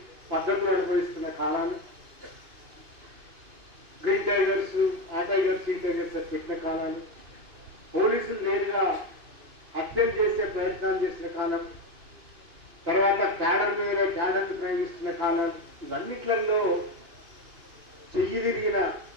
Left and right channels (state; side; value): late; left; 2.8 ms